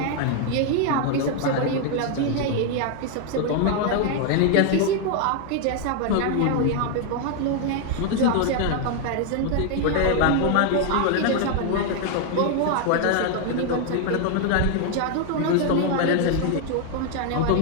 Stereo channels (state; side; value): different; both; correlation 0.01